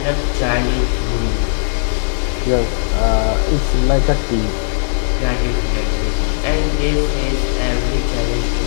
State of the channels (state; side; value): silent; right; 68 dB below the other